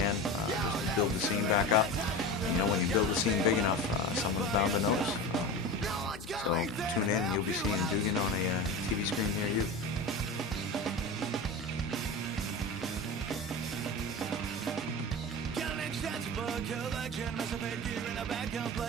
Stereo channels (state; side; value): normal; both; correlation 0.28